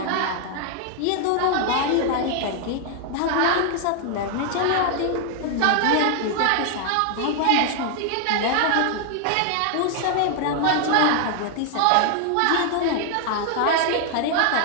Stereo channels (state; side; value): different; both; correlation 0.00